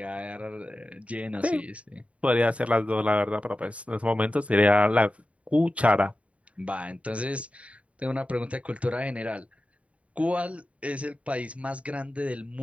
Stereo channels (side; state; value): left; late; 0.065 ms